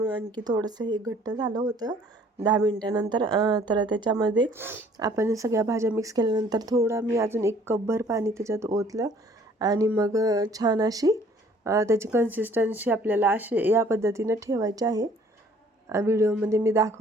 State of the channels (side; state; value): both; normal; correlation 0.57